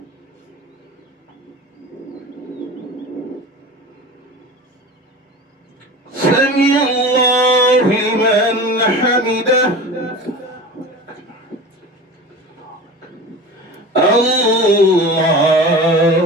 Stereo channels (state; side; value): normal; both; correlation 0.34